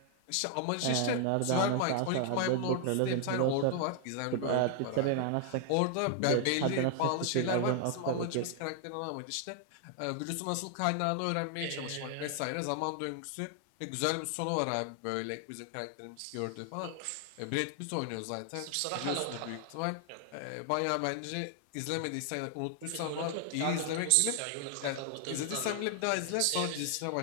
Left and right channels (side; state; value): both; different; correlation 0.00